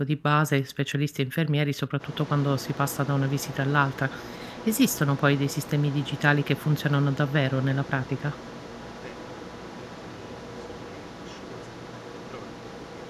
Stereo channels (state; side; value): identical; both; correlation 1.00